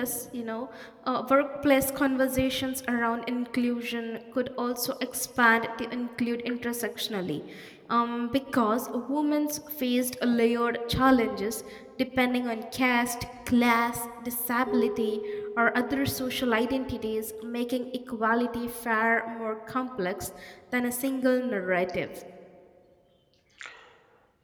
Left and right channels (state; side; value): identical; both; correlation 1.00